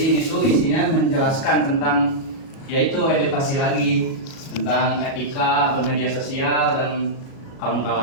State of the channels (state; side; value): late; right; 37 ms